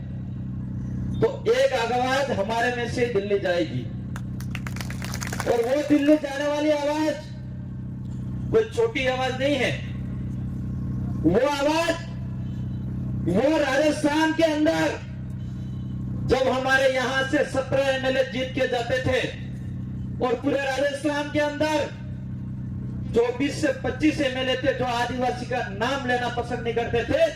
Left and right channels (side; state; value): both; identical; correlation 1.00